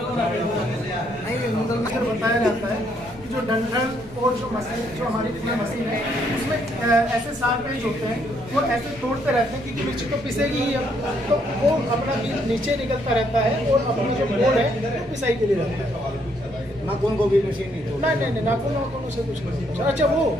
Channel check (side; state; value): both; normal; correlation 0.71